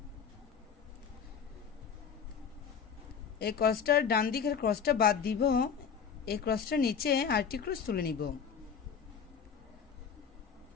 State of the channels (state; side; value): quieter; right; 6.9 dB